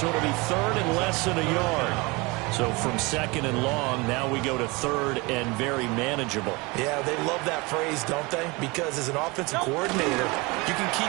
it'll be third and less than a yard. So from second and long, now we go to third and very manageable. Yeah, they love that phrase, don't they? Because as an offensive coordinator, you can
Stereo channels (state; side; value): quieter; left; 25.6 dB